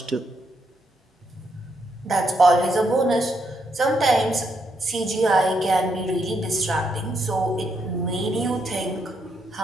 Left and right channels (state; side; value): normal; both; correlation 0.78